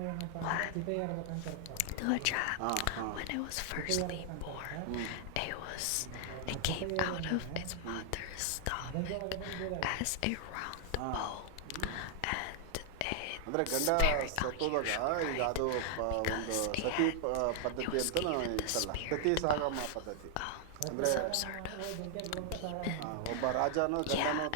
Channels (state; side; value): different; both; correlation 0.00